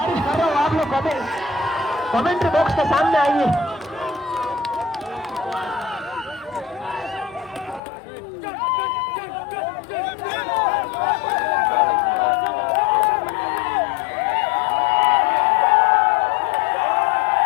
কমেন্ট্री बॉक्स के सामने आइए।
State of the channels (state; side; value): drops out; right; at 7.8 s